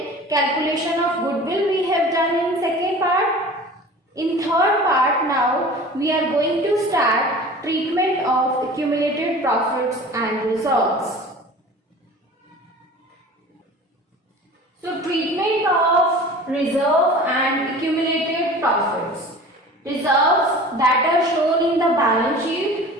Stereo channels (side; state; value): both; normal; correlation 0.40